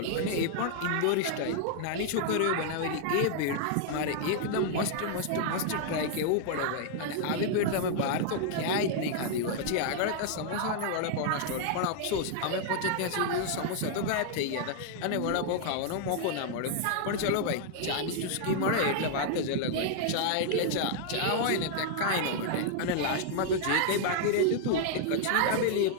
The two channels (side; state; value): both; different; correlation 0.00